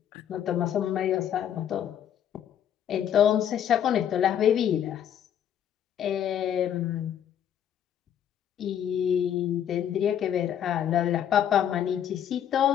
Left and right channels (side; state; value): right; quieter; 9.7 dB